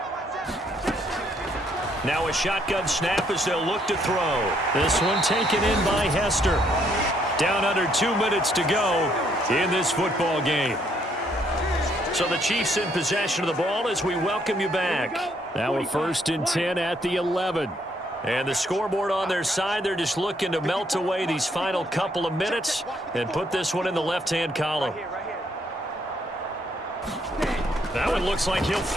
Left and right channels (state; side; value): normal; both; correlation 0.70